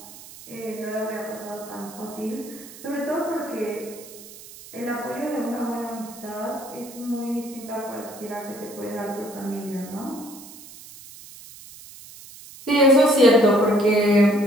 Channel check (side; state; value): right; noise; hiss, 17 dB below the sound